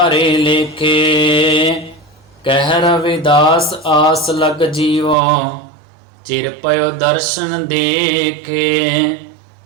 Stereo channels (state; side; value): drops out; left; at 5.2 s